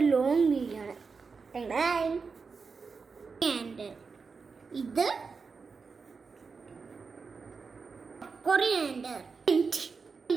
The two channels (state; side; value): quieter; left; 4.9 dB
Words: ലോങ് വീഡിയോ ആണ്. ഇത് കൊറിയാൻഡർ,